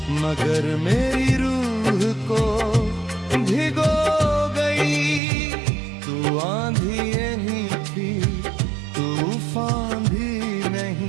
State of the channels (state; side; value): drops out; left; at 5.2 s